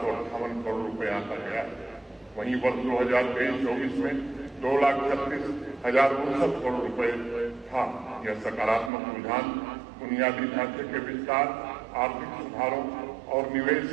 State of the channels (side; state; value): left; drops out; at 8.9 s